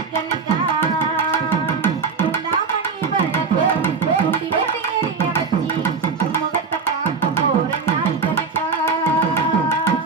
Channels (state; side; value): quieter; left; 5.0 dB